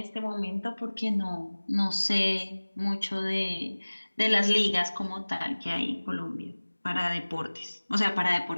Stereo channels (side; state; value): both; inverted; correlation -1.00